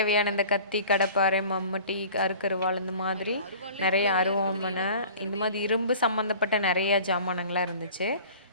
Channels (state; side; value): inverted; both; correlation -0.44